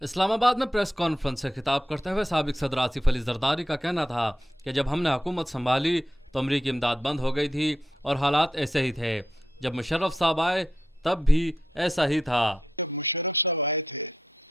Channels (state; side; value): normal; both; correlation 0.85